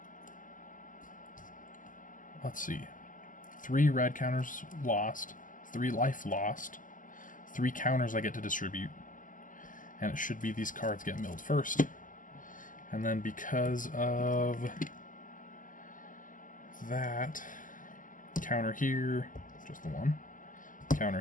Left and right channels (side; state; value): right; late; 0.38 ms